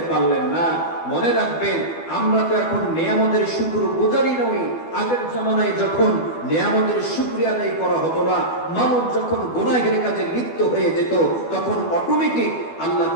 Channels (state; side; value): late; right; 12 ms